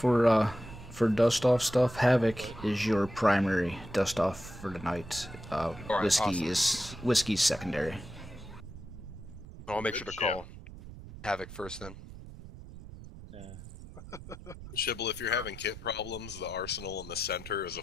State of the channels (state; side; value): noise; right; rumble, 14 dB below the sound